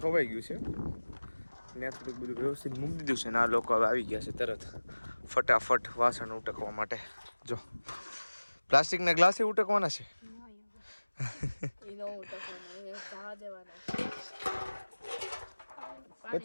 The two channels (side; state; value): both; inverted; correlation -1.00